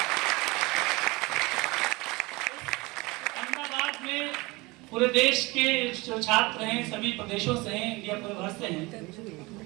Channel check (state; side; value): quieter; left; 23.8 dB